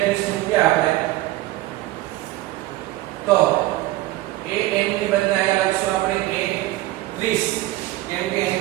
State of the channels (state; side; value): quieter; left; 17.0 dB